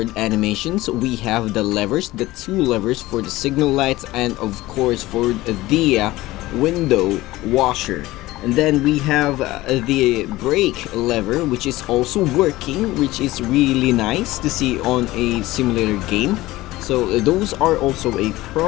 animations. We have the levers, the two levers for the signal lights, and of course for the window washer. And then we have the brake lever, which is also working, which is really nice to see on a simulator game. So those are also a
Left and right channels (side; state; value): right; quieter; 18.0 dB